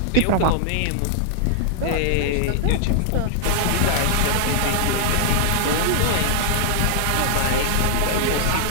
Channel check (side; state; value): both; different; correlation -0.01